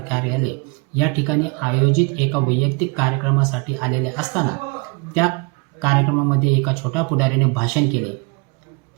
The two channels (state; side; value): quieter; left; 29.4 dB